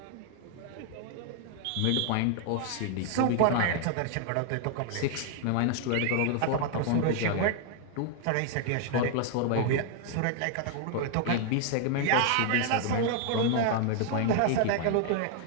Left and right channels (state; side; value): different; both; correlation 0.00